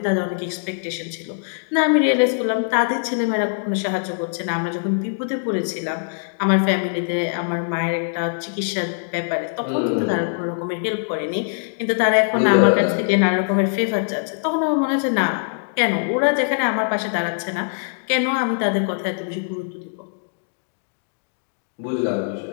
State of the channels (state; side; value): silent; right; digital silence